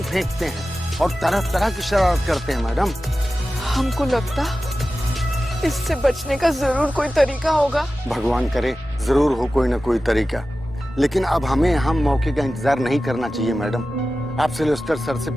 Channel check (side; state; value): both; normal; correlation 0.94